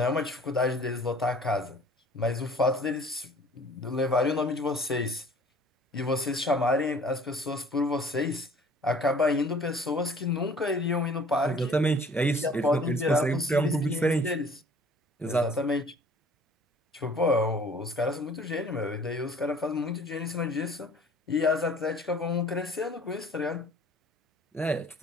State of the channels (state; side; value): normal; both; correlation 0.52